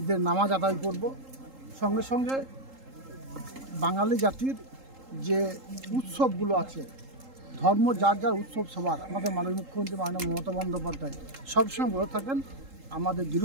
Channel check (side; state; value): left; late; 3.8 ms